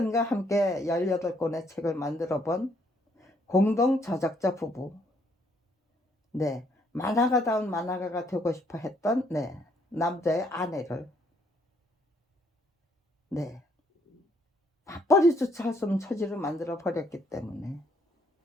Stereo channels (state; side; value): normal; both; correlation 0.68